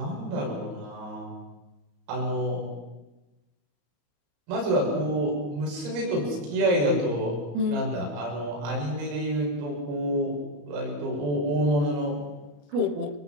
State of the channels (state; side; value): late; left; 34 ms